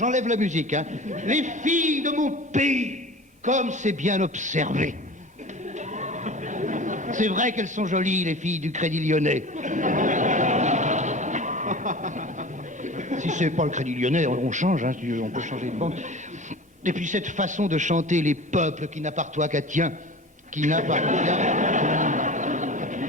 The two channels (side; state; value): both; normal; correlation 0.37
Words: la musique, hein. Les filles de mon pays, comme c'est bien observé. C'est vrai qu'elles sont jolies, les filles du Crédit Lyonnais. Si c'est pas le Crédit Lyonnais, on change, hein, on peut changer de banque. Et puis cette façon de chanter les peuples qui n'appartiennent qu'à tien, qui n'appartiennent...